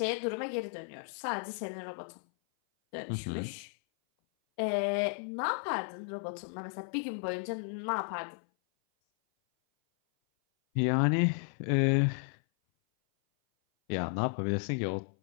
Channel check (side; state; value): right; silent; 55 dB below the other